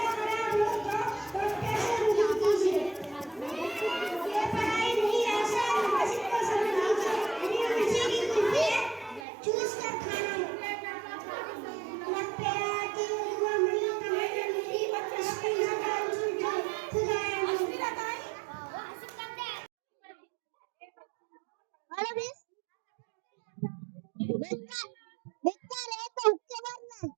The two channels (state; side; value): drops out; left; at 9.2 s